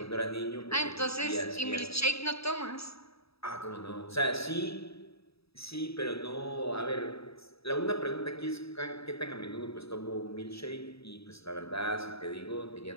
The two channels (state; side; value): late; right; 0.77 ms